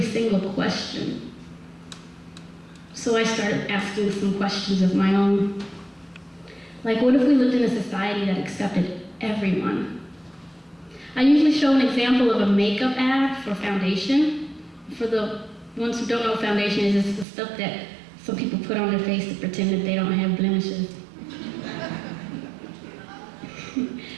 single question. So I started asking some questions of my own. Like, what if we lived in a society that accepted everyone? I usually show an example of a makeup ad for foundation. For the ones who don't know what foundation is, it's the stuff that some people put on their face to pretend that they don't have blemishes.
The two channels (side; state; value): left; drops out; at 17.2 s